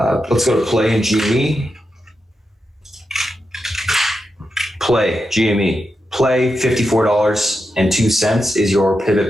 go to play in GME. Play GME. Play $54.02 is your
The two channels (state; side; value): normal; both; correlation 0.87